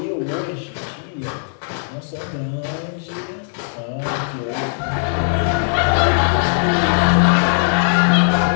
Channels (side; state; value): right; silent; digital silence